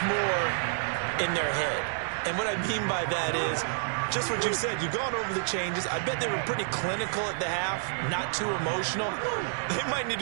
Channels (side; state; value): left; silent; digital silence